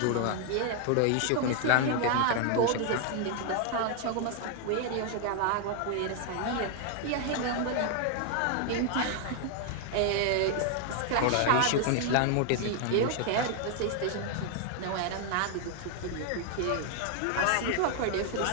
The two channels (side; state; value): both; different; correlation 0.00